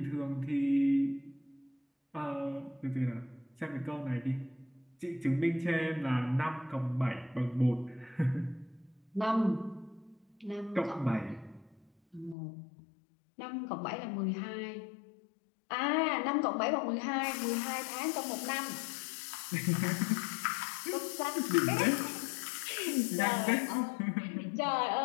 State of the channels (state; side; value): drops out; right; at 12.4 s